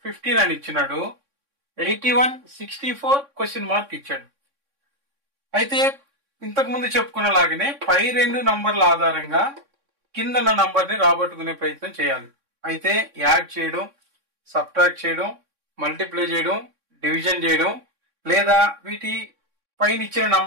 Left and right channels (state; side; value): late; left; 3.6 ms